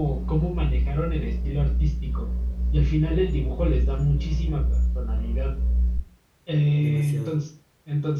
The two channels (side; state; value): both; identical; correlation 1.00